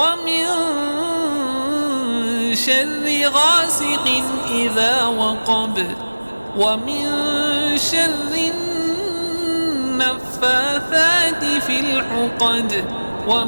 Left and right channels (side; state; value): both; inverted; correlation -1.00